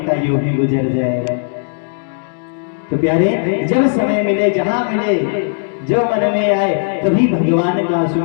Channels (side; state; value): right; silent; digital silence